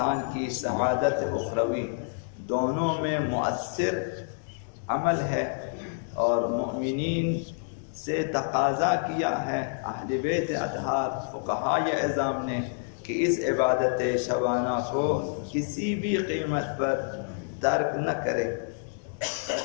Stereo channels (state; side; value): silent; right; digital silence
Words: کی سعادت اخروی دونوں میں مؤثر عمل ہے، اور مؤمنین سے تقاضا کیا ہے اہل بیت اطہار فقہائے اعظام نے کہ اس عبادت شبانہ کو کسی بھی قیمت پر ترک نہ کرے۔